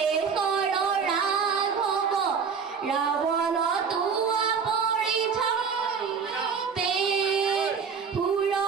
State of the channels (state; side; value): quieter; left; 6.1 dB